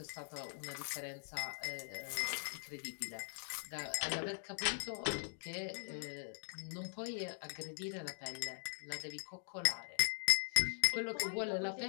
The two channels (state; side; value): silent; right; digital silence